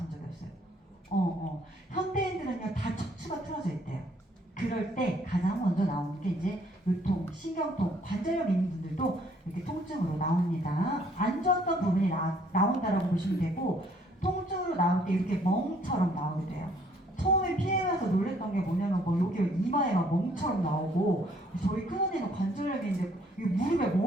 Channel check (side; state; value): both; normal; correlation 0.64